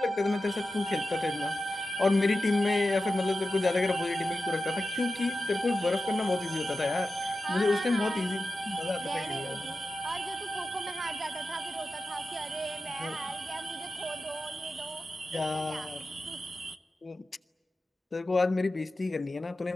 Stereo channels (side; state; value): both; normal; correlation 0.92